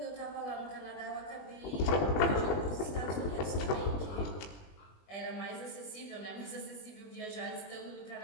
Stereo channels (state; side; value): late; right; 20 ms